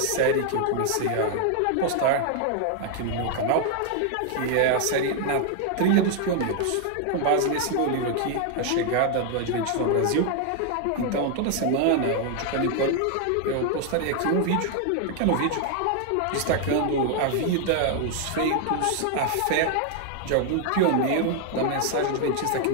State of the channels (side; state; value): both; different; correlation 0.00